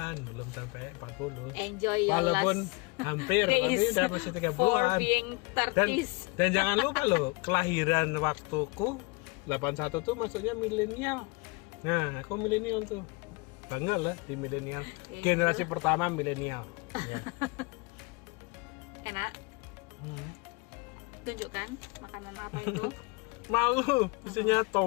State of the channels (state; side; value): quieter; right; 26.9 dB